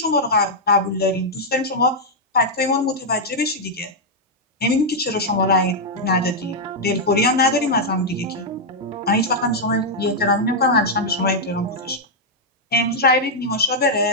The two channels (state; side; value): normal; both; correlation -0.04